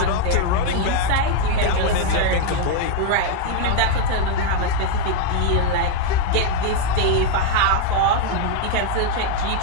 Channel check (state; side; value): different; both; correlation 0.00